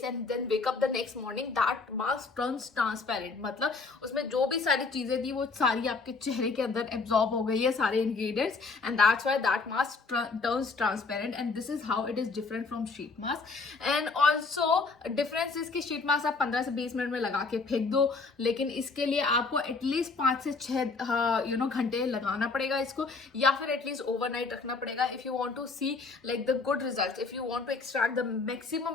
and then wake up the next morning, that mask turns transparent. मतलब उसमें जो भी सारी चीजें थी वो सारी आपके चेहरे के अंदर एब्जॉर्ब हो गई ये सारे ingredients and that's why that mask turns transparent and this is how it is different from sheet mask. And also difference is कि sheet mask आप 15 से 20 मिनट में लगा के फेंक दो, लेकिन इसके लिए आपको एटलीस्ट 5 से 6 घंटे लगाना पड़ेगा इसको, या फिर एटलीस्ट ओवरनाइट रखना पड़ेगा if you want to see like the good results. If you want to extract the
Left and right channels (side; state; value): right; quieter; 4.2 dB